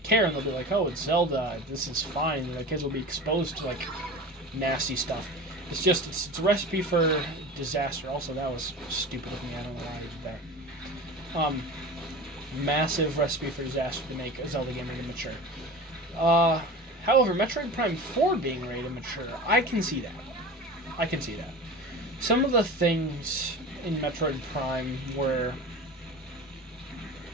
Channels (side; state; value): both; normal; correlation 0.33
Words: care, and they'll be like, oh, it's Zelda, this is fine, and the kids will be exposed to, like, nasty stuff. It's a recipe for disaster. Also, that was stupid of me. I don't know why I did that. Massive recipe for disaster to make a Zelda game rated mature. However, Metroid Prime 4 being rated mature, I can see that. Some of the things in Metroid Prime were